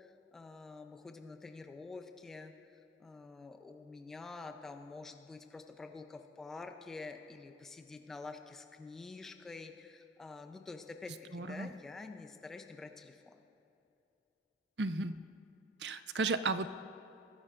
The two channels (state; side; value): normal; both; correlation 0.41